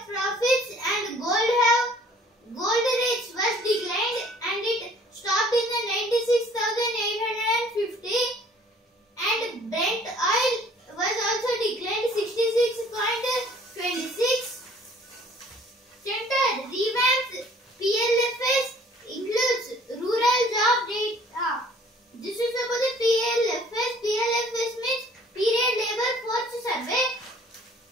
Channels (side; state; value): both; normal; correlation 0.55